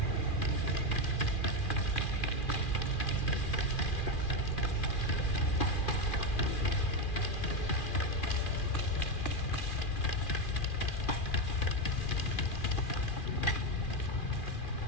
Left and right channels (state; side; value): late; right; 2.4 ms